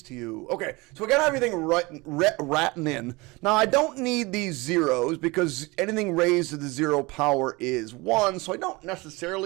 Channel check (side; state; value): left; quieter; 24.1 dB